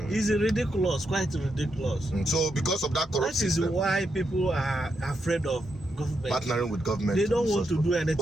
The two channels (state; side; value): normal; both; correlation 0.83